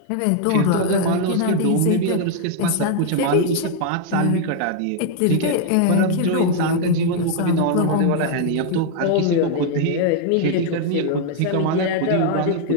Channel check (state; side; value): different; both; correlation 0.00